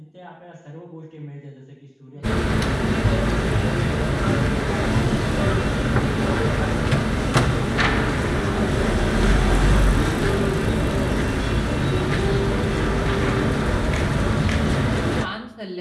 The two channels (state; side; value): identical; both; correlation 1.00